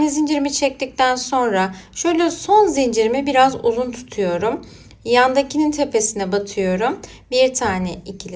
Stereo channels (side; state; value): both; identical; correlation 1.00